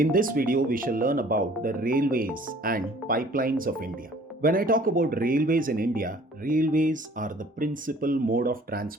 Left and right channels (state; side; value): normal; both; correlation 0.53